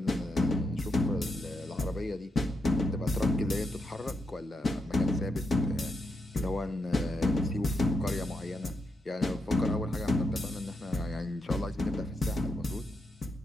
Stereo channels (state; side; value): normal; both; correlation 0.83